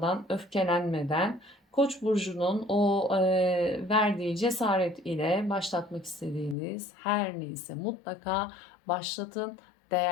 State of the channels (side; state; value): right; drops out; at 6.6 s